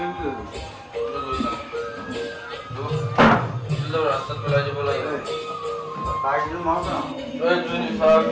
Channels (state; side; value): identical; both; correlation 1.00